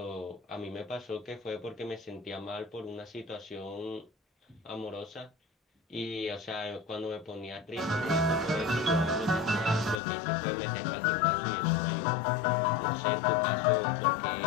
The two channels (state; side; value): drops out; right; at 10.0 s